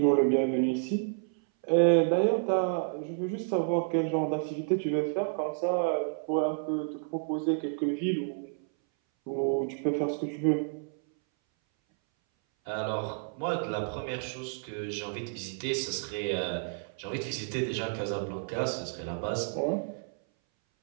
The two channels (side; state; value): left; silent; 58 dB below the other